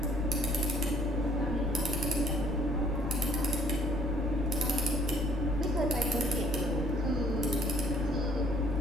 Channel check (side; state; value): both; normal; correlation 0.60